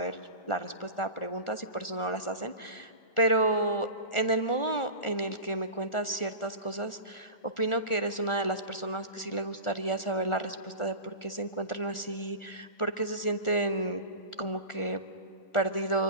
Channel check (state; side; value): late; right; 1.4 ms